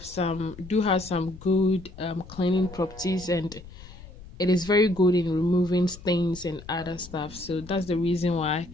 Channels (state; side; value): noise; left; rumble, 17 dB below the sound